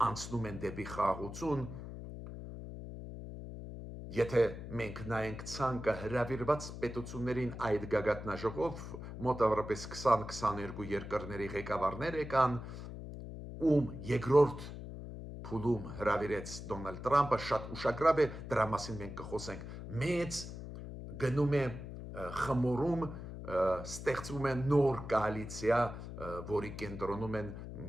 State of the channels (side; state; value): left; noise; hum, 10 dB below the sound